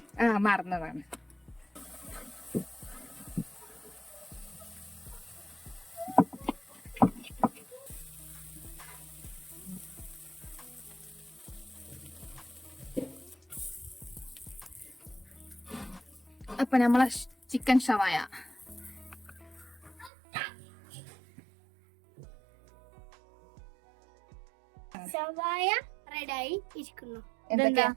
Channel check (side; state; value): left; drops out; at 20.1 s